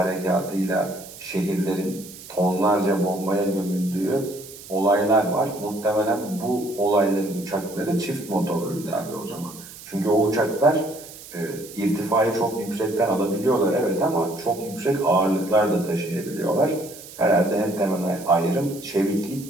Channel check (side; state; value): right; noise; hiss, 16 dB below the sound